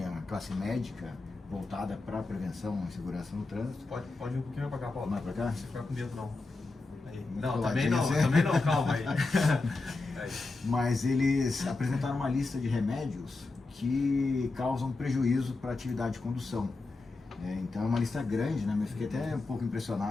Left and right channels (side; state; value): right; quieter; 3.5 dB